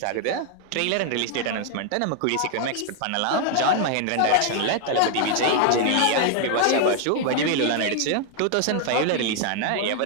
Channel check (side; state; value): both; different; correlation 0.00